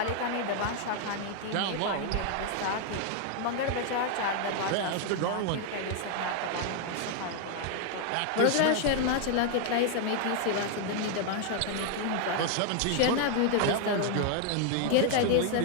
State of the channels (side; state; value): both; different; correlation 0.00